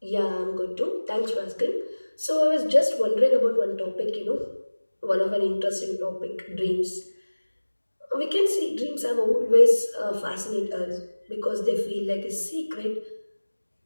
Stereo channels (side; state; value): both; inverted; correlation -1.00